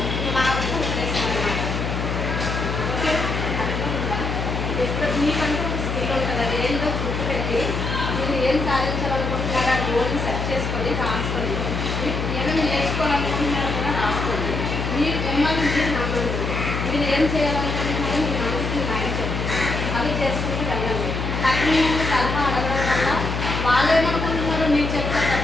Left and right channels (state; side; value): noise; left; hum, 2 dB below the sound